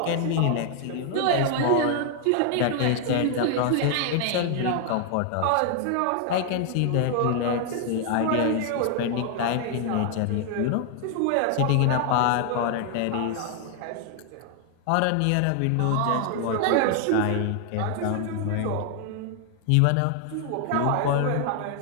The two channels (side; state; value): both; different; correlation 0.00